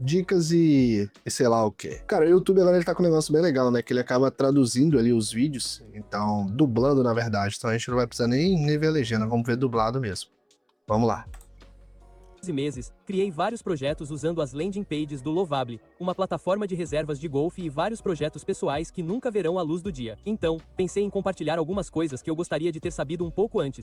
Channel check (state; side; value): identical; both; correlation 1.00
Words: e sei lá o que. Cara, o YouTube agora ele tá com um negócio bem legal, né? Que ele acaba traduzindo ali os vídeos, então, dublando na verdade. Então a gente não vai precisar nem ver a legenda, vamos ver dublado mesmo. Vamos lá. Meses, criei vários projetos usando as landing pages do Lovable, uma plataforma de reservas de golfe e vários projetos pessoais que nunca verão a luz do dia. Então, pensei em compartilhar algumas coisas que eu gostaria de ter sabido um pouco